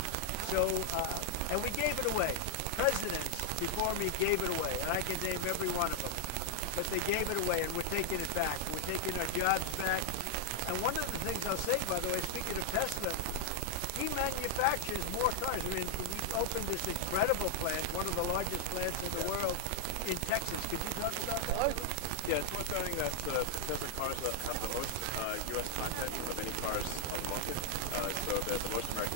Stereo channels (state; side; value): different; both; correlation 0.00